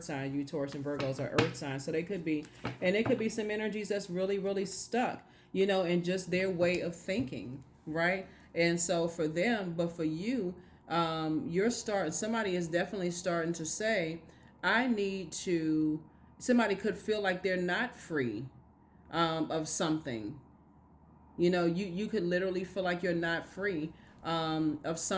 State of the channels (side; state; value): both; identical; correlation 1.00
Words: sign. You Taurus and Virgos are earth signs. So they could be, and it could be some energies that's really, really stuck, in just their way of thinking, right? And so for them, but for you, somebody is definitely starting to say, somebody could feel like they're not free of something. You could literally feel like you're not free of